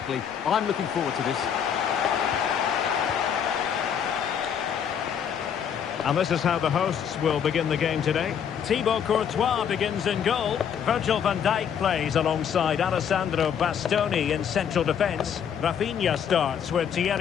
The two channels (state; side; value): quieter; right; 8.1 dB